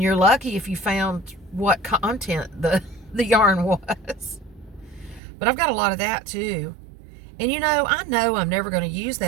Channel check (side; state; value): left; drops out; at 5.2 s